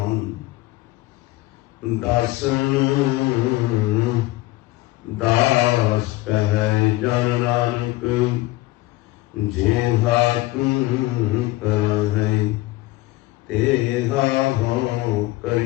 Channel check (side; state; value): right; quieter; 18.3 dB